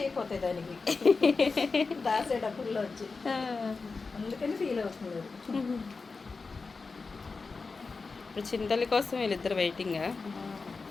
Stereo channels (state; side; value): quieter; right; 4.3 dB